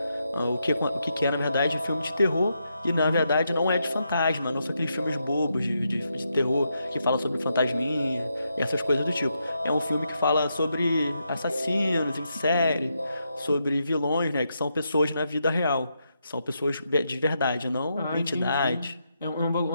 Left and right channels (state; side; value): inverted; both; correlation -0.82